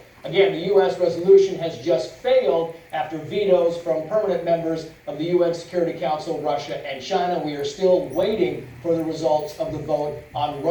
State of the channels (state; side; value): identical; both; correlation 1.00